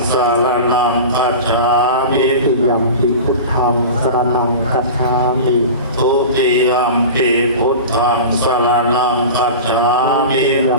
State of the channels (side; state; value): both; inverted; correlation -0.31